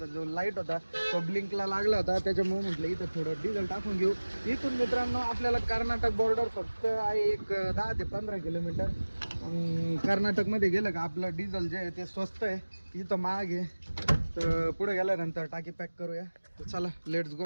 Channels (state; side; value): inverted; both; correlation -1.00